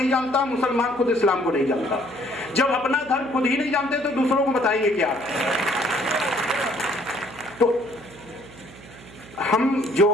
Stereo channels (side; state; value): right; noise; hum, 20 dB below the sound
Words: जानता, मुसलमान खुद इस्लाम को नहीं जानता। जब अपना धर्म खुद ही नहीं जानते तो दूसरों को बताएंगे क्या। तो हम जो